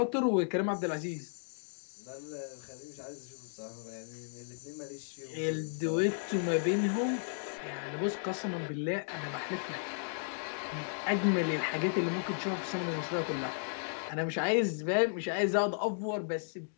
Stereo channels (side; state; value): right; silent; digital silence